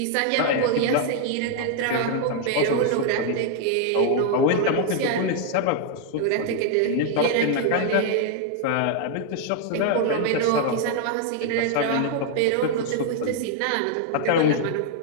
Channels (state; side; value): different; both; correlation 0.00